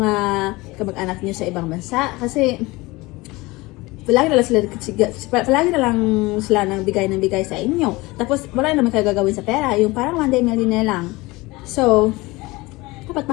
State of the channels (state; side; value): quieter; right; 22.0 dB